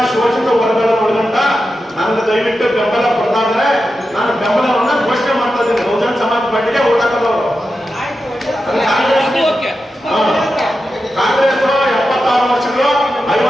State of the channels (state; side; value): normal; both; correlation 0.90